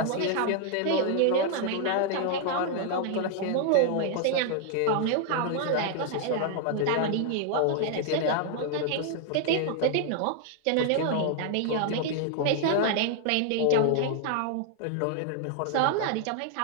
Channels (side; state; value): both; different; correlation 0.00